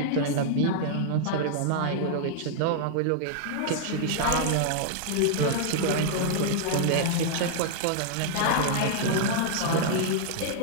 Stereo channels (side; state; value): both; different; correlation -0.01